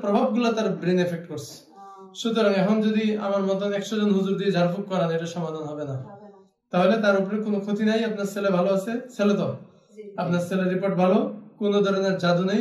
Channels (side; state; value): both; identical; correlation 1.00